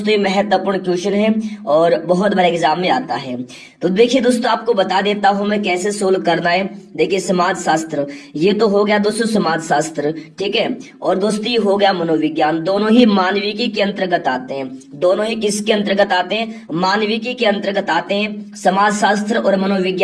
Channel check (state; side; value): identical; both; correlation 1.00